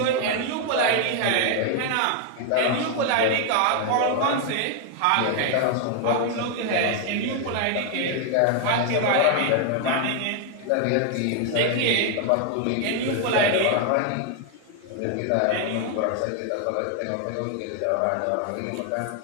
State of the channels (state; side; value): different; both; correlation 0.00